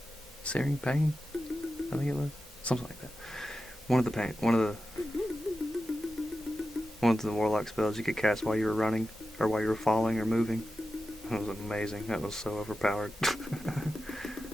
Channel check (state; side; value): normal; both; correlation 0.92